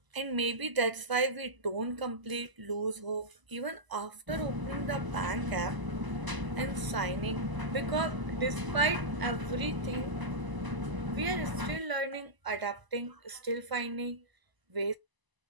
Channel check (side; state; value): left; late; 1.0 ms